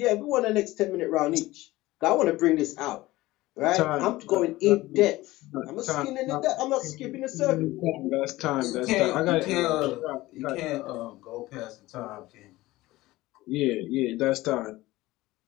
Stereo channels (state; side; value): quieter; right; 18.3 dB